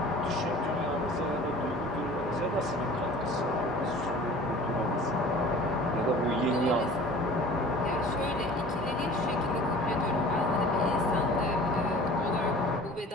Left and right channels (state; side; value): normal; both; correlation 0.44